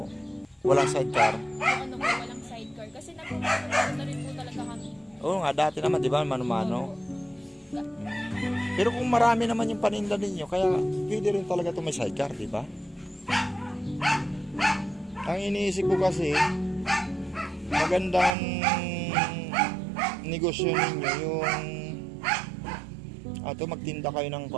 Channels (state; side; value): drops out; left; at 18.3 s